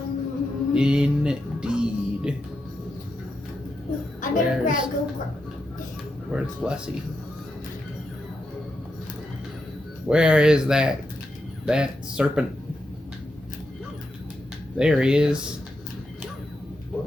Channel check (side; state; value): both; normal; correlation 0.85